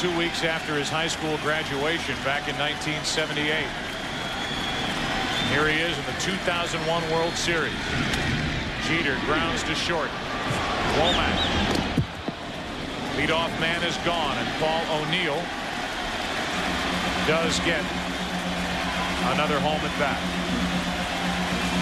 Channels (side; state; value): both; identical; correlation 1.00